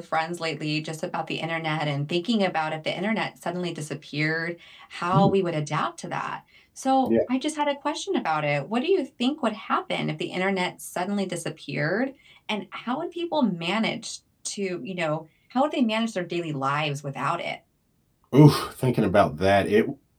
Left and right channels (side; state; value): both; identical; correlation 1.00